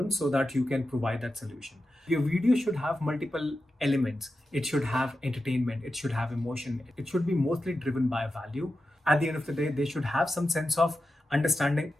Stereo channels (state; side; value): normal; both; correlation 0.91